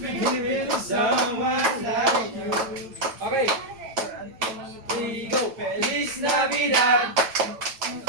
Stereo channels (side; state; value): left; late; 9.0 ms